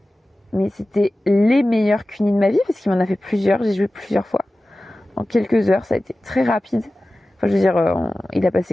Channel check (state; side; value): normal; both; correlation 0.96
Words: Mais c'était les meilleurs cunis de ma vie, parce qu'il m'en a fait plusieurs, j'ai joué plusieurs fois. En quelques heures, ça a été très rapide. Enfin, je veux dire, il a